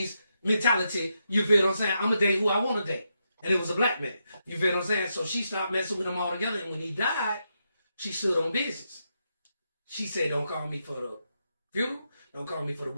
mentality. You feel what I'm saying? I'm going to date who I want to date. And it was a black man. You feel what I'm saying? So she stopped messing with him altogether. And when he died, she stood on business. She said, don't call me for the funeral. Don't call me for the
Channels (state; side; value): inverted; both; correlation -0.83